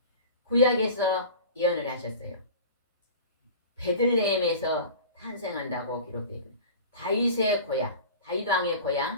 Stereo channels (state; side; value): inverted; both; correlation -0.37